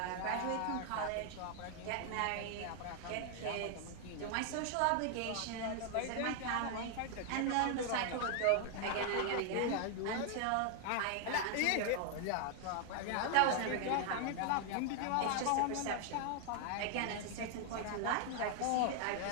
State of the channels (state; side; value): different; both; correlation 0.00